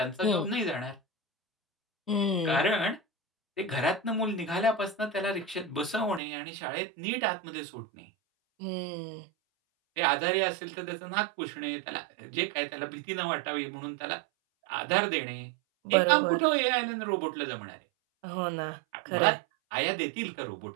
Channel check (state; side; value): drops out; left; at 6.2 s